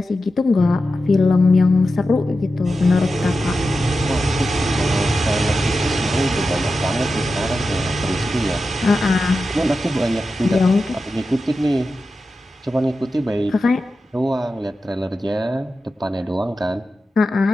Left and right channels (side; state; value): both; normal; correlation 0.91